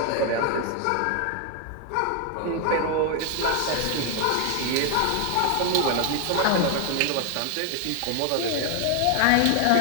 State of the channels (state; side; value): different; both; correlation 0.00